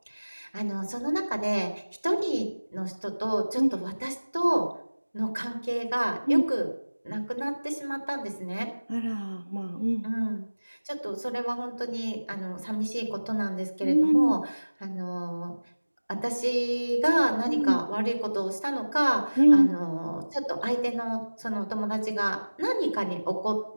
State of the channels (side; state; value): both; inverted; correlation -1.00